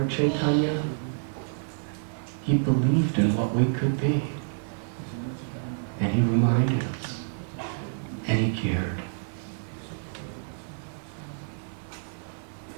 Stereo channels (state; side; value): silent; left; 59 dB below the other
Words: Chaitanya, he believed in what we could be. And he reminded us. And he cared.